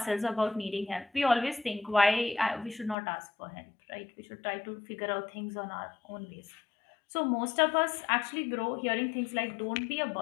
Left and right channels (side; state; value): right; drops out; at 3.0 s